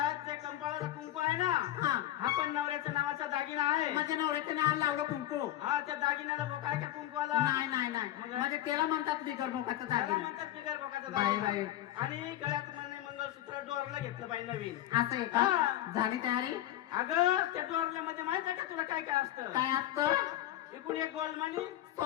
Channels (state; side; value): quieter; right; 13.7 dB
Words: जे कंपाळाला कुंकू आहे ना हा हा पण नवऱ्याच्या नावाचा दागिना आहे माझ्या नवऱ्याच्या नाव लावलं कुंकू हा त्या दागिन्याला बोकाय का कुंकवाला नाही नाही नाही म्हणजे त्याला म्हणतात बिगर बोकाचा त्याला दागिन म्हणतात बिगर बोकाचा बाई, दागिना बाई. आणि गळ्यात म्हणे मंगळसूत्र डोरला घेतलं बाई नवीन असं आहे का हा. झाली तयारी अगं त्या डोरल्यामध्ये माहित आहे का तुला काय काय असतं काय असतं इकडून एक गोल मणी